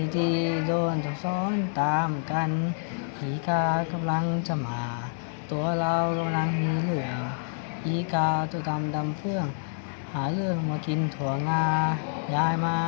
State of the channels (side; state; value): right; silent; 60 dB below the other